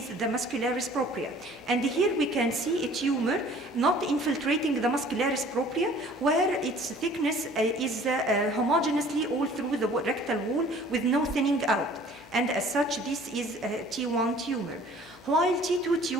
the muscularis propria. And here we can see a tumor not infiltrating the muscularis propria, where its thickness is homogeneously all through the rectal wall with no thinning out. And as such, this is a T1 tumor. While T2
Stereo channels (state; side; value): noise; left; hum, 25 dB below the sound